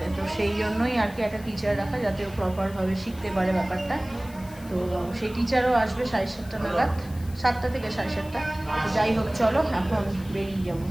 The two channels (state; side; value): noise; left; hiss, 21 dB below the sound